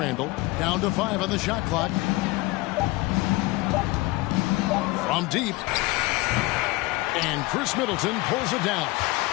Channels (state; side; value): quieter; right; 22.0 dB